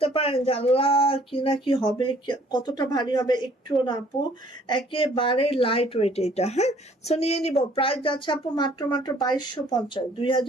পারেন যে আল্লাহ কি না কি হবে, কতটা ভারী হবে, একটুও না আপু, একেবারে লাইট ওয়েট এটা। হ্যাঁ, সো নিয়ে নিব, প্রাইস যাচ্ছে আপু মাত্র মাত্র 2250,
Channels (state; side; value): normal; both; correlation 0.58